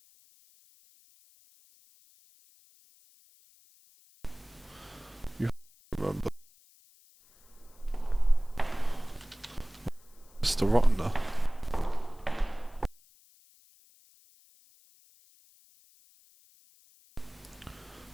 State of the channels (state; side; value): noise; left; hiss, 28 dB below the sound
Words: You remember. Mr. Rottener.